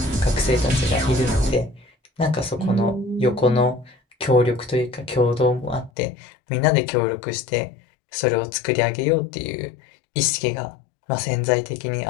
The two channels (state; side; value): drops out; right; at 5.9 s